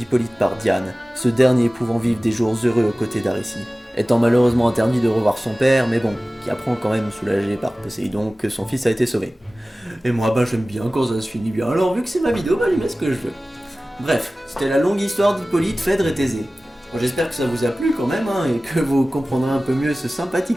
par Diane, ce dernier pouvant vivre des jours heureux aux côtés d'Aricie, étant malheureusement interdit de revoir son père, mais bon, qui apprend quand même soulagé par Poséidon que son fils a été sauvé. Et moi, j'aime bien quand ça se finit bien, alors vu que c'est ma vidéo, je mets ce que je veux. Bref, c'était la longue histoire d'Hippolyte, Phèdre et Thésée. Bon, j'espère que ça vous a plu quand même, et que vous comprendrez un peu mieux ce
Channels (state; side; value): normal; both; correlation 0.97